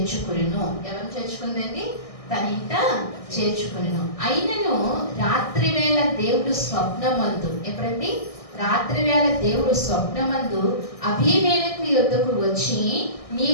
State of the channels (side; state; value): right; late; 1.6 ms